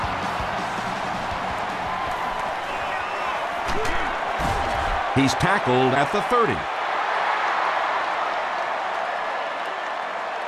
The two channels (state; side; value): identical; both; correlation 1.00